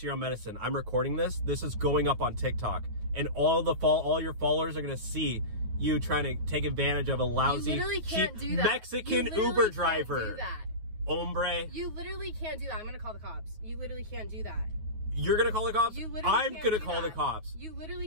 your own medicine. I'm recording this. This is going up on TikTok. And all your followers are going to see you trying to take advantage of a lousy, cheap Mexican Uber driver. You literally can't do that. Hombre. You literally can't do that. I'm going to call the cops. You literally can't do that. You're going to call the cops? You literally I'm going to call the cops. You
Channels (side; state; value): left; late; 9.4 ms